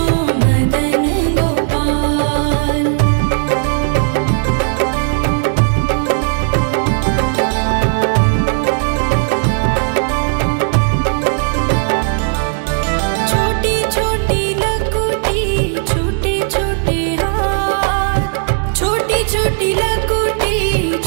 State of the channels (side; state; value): left; silent; digital silence